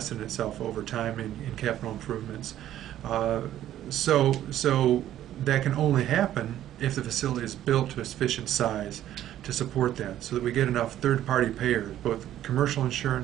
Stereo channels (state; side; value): quieter; left; 12.3 dB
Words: in itself over time in capital improvements. So that can only happen if the facility is built to a sufficient size to support that, so that we get enough third-party payers, both commercial